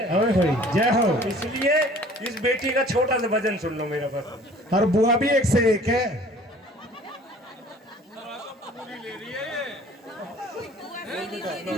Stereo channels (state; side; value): normal; both; correlation 0.50